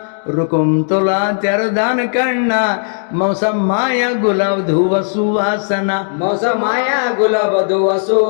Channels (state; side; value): silent; right; digital silence